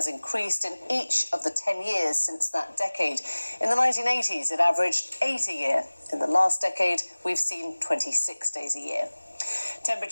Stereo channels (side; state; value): both; inverted; correlation -1.00